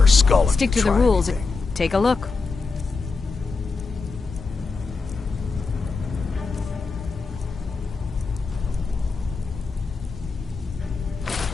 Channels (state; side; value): quieter; right; 4.3 dB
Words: skull if Stick you to the try rules. anything. Take a look.